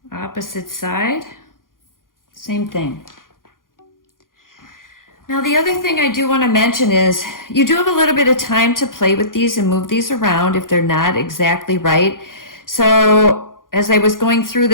Opposite side, same thing. Now the other thing I do want to mention is you do have a little bit of time to play with these and move these around if they're not exactly right. So as I was going through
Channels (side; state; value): right; late; 0.90 ms